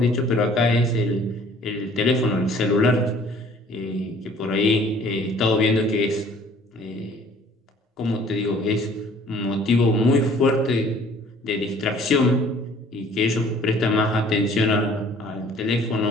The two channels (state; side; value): normal; both; correlation 0.54